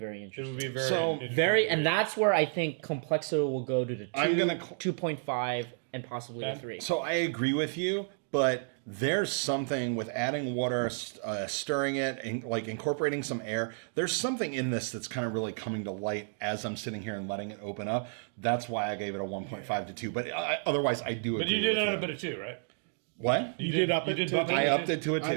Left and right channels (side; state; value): left; silent; 57 dB below the other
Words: It interesting. would be very So, interesting. Very, and that's where I think complexity will go to the 2, I'm gonna 2.5, and possibly the Okay. 3. So I agree with you, but there's something with adding water, stirring it, and like incorporating some air. There's something in this that's kind of really coming to light as I'm sitting here and letting it open up. That's why I gave it a 1.5 to 2. But otherwise, I do. But agree you did with it a bit of 2, right? What? You did up it to bump a I to upped 2? it to a 2. I